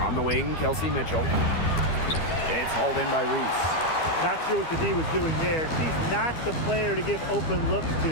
On the wing, Kelsey Mitchell. It's hauled in by Reese. Not sure what the D was doing there. She's not the player to give open looks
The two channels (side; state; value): right; late; 12 ms